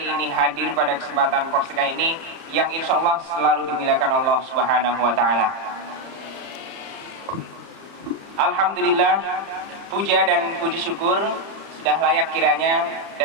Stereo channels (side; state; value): left; late; 30 ms